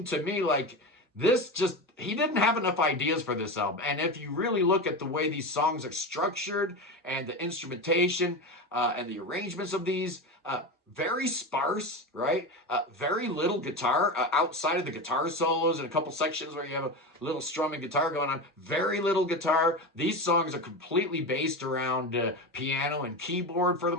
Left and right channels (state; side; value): normal; both; correlation 0.22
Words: to me like he didn't have enough ideas for this album. And if you really look at the way these songs are structured and the instrumentation and the arrangements of these, very sparse, right? Very little guitar outside of the guitar solos and a couple sections where you have a little strumming guitar going on. Very little guitar. These songs are completely based around piano and keyboard for the